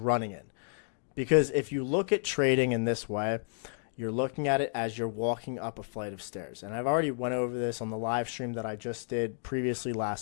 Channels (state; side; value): silent; right; digital silence